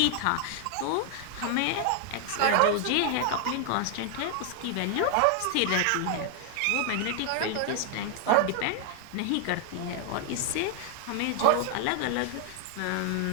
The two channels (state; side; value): different; both; correlation 0.00